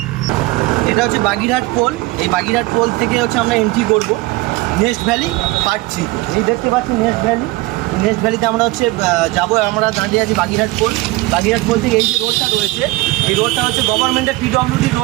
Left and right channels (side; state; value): left; quieter; 20.6 dB